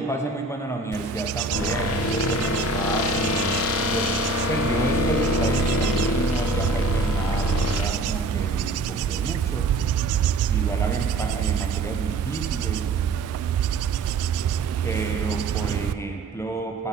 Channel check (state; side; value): quieter; left; 3.2 dB